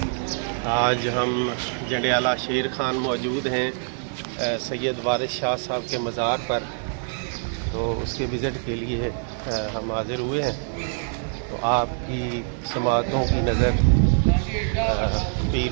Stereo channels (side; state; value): left; silent; 57 dB below the other